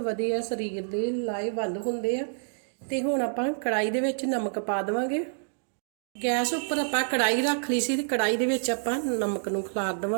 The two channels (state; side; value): silent; left; digital silence